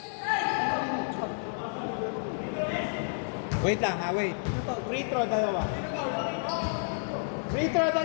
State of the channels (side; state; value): right; silent; digital silence